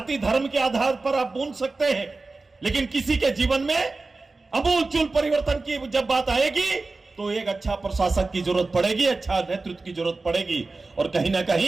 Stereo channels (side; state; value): left; quieter; 3.6 dB